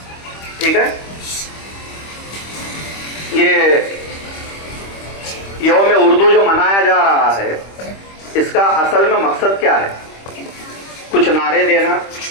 ठीक है, ये यौम उर्दू जो मनाया जा रहा है, इसका असल में मकसद क्या है? कुछ नारे देना,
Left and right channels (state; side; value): late; right; 25 ms